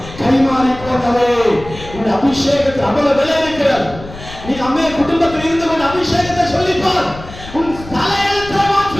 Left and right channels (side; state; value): left; noise; rumble, 15 dB below the sound